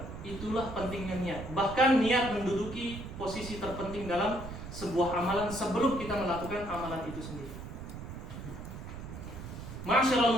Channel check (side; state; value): right; noise; rumble, 10 dB below the sound